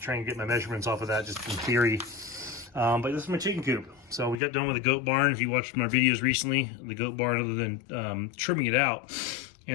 and get my measurements off of that just in theory. But this is my chicken coop. So we got done with the goat barn. If you watched my videos recently, the goat barn, other than trimming it out,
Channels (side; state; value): right; drops out; at 4.4 s